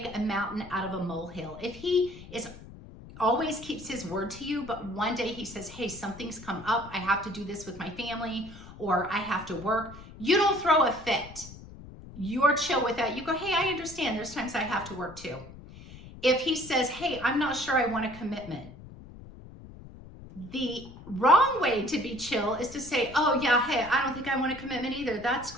a mountain out of a molehill. If he always keeps his word to you, but one day he says, hey, something's come up, I have to do this with my family, or I have to work, you don't throw a fit. You're chill with that. You go, hey, I understand. There's times I have to work too. If he says, hey, I'm not sure I want a commitment, the wrong way to be chill is to say, oh yeah, hey, I don't think I want a commitment either. That's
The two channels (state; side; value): noise; left; rumble, 16 dB below the sound